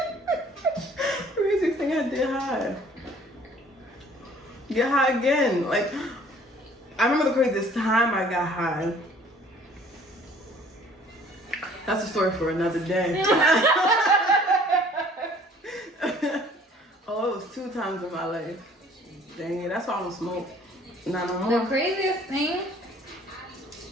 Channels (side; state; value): both; normal; correlation 0.54